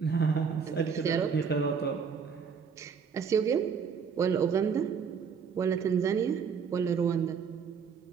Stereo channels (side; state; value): left; quieter; 6.4 dB